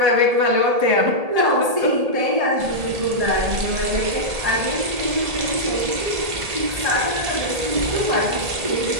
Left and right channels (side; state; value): left; late; 1.8 ms